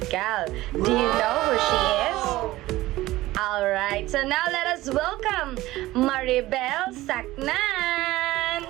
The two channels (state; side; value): quieter; left; 17.4 dB